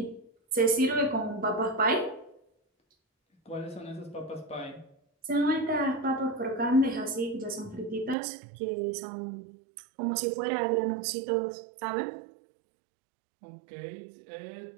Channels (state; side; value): drops out; left; at 8.2 s